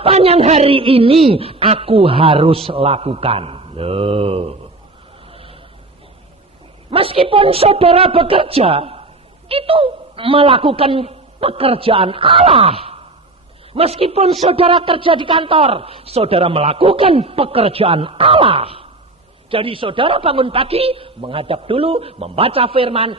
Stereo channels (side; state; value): left; quieter; 3.0 dB